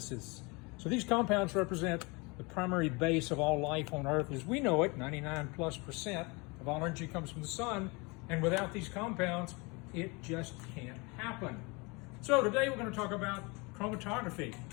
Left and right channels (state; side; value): quieter; right; 27.8 dB